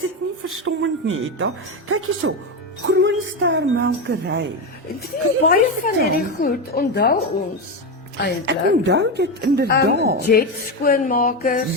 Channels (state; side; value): normal; both; correlation 0.14